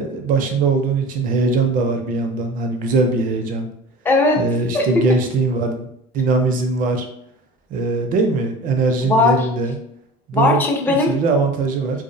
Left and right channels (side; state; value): both; normal; correlation 0.39